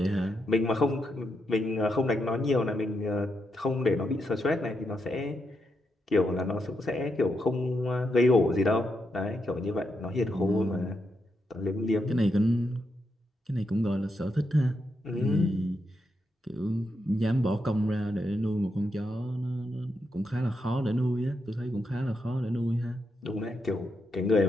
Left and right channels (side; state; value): both; normal; correlation 0.83